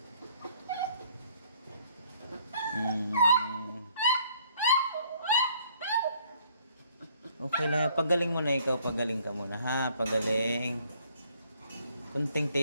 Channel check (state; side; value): inverted; both; correlation -0.62